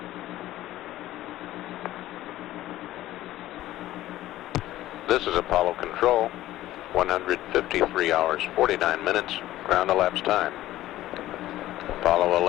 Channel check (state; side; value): quieter; right; 14.9 dB